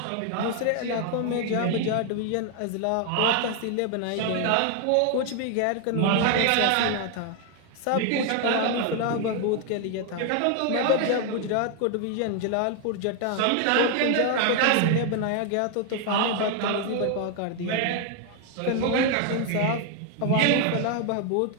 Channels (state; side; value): different; both; correlation 0.01